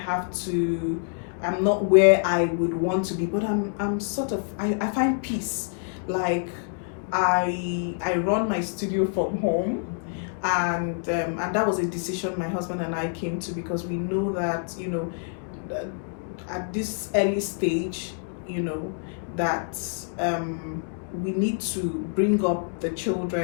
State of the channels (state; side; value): silent; right; 60 dB below the other